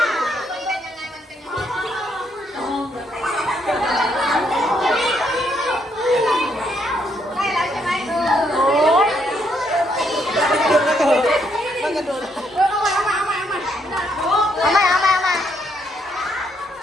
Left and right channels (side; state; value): both; normal; correlation 0.74